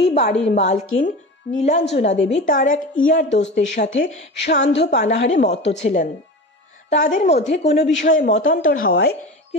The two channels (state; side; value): normal; both; correlation 0.30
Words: বাড়ির মালকিন নীলাঞ্জনা দেবী তার এক ইয়ার দোস্তের সাথে সান্ধ্য পানাহারে মত্ত ছিলেন। তাদের মধ্যে কোনো বিষয়ে মতান্তর হওয়ায়